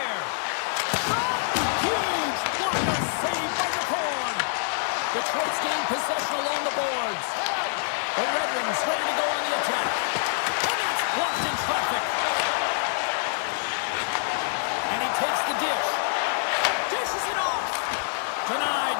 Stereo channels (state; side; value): silent; right; digital silence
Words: Huge blocker save by the corn. Detroit's gained possession along the boards. The Red Wings ready to go on the attack. And that's blocked in traffic. And he takes the dish. Dishes it off. Denied